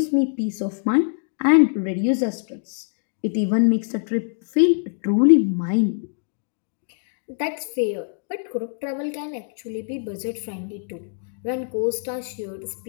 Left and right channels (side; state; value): right; silent; digital silence